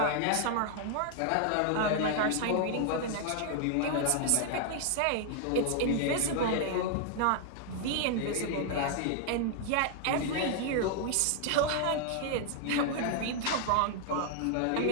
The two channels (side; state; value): both; different; correlation 0.00